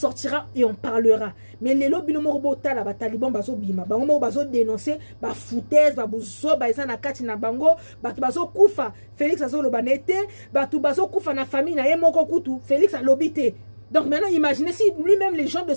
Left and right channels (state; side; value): inverted; both; correlation -1.00